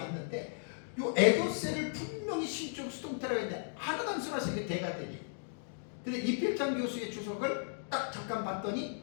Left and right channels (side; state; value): right; silent; digital silence